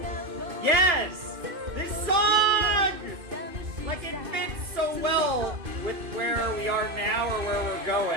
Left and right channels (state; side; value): late; left; 2.3 ms